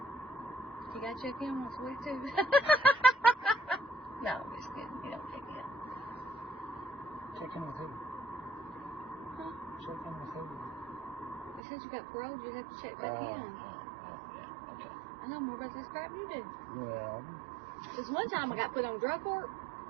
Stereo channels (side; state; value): left; drops out; at 11.6 s